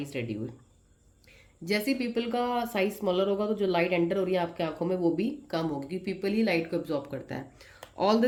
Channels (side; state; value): both; identical; correlation 1.00